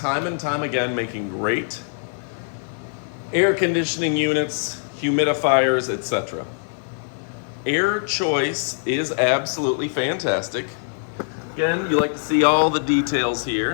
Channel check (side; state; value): right; silent; digital silence